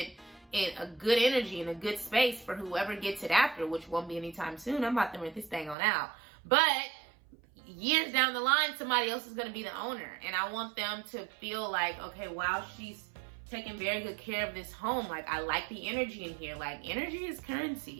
in a good energy, in a good space for whoever gets it after, which won't be anytime soon. I'm about to rent this thing on out. But years down the line, somebody else is going to be the owner. And I want them to feel like, okay, wow, she's taking very good care of this home. Like, I like the energy in here. Like, energy is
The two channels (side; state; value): left; drops out; at 5.8 s